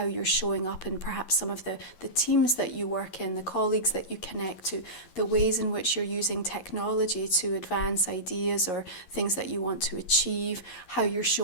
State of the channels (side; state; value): right; late; 11 ms